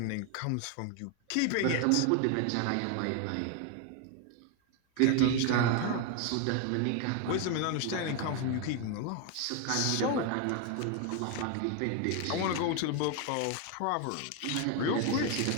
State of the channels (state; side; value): different; both; correlation 0.01